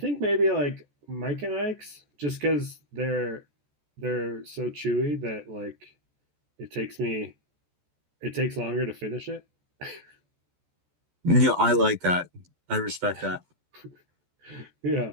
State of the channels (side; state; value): left; late; 14 ms